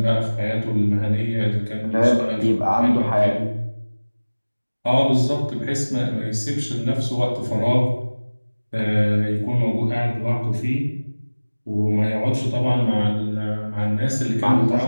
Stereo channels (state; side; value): inverted; both; correlation -1.00